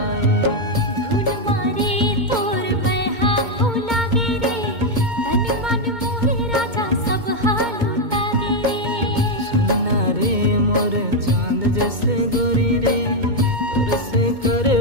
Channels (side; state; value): left; late; 2.2 ms